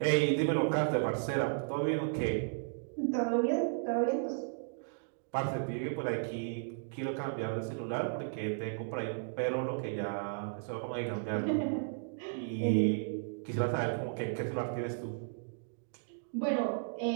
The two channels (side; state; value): left; silent; digital silence